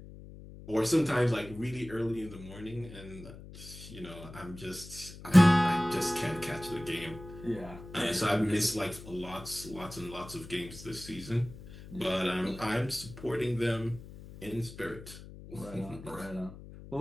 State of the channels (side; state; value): left; noise; hum, 15 dB below the sound